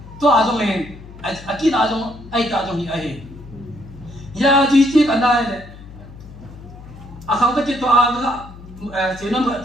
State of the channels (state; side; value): noise; left; hum, 17 dB below the sound